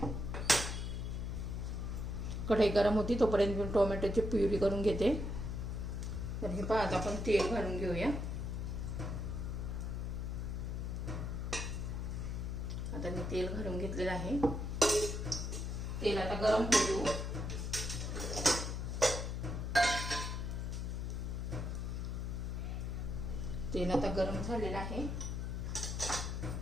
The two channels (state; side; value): noise; left; hum, 3 dB below the sound